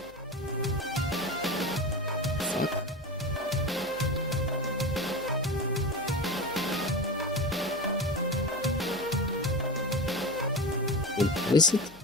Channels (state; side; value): noise; left; hum, 24 dB below the sound